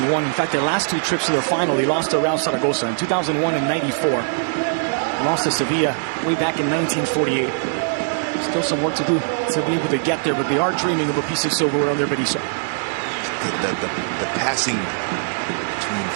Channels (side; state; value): left; silent; digital silence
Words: In fact, their last 2 trips to the final, they lost to Real Zaragoza in 2001 and 94. They lost to Sevilla way back in 1948. Still some work to do to be able to get there, but they are dreaming of a piece of silverware under Berizzo. The passing between